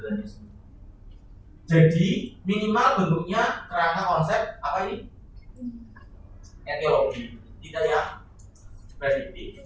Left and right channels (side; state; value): both; identical; correlation 1.00